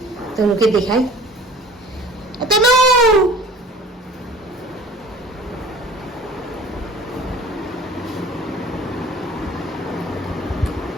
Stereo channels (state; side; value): normal; both; correlation 0.46